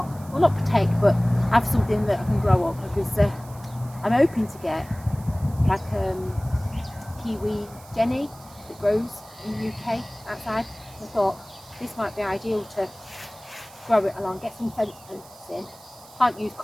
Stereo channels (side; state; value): right; noise; hiss, 22 dB below the sound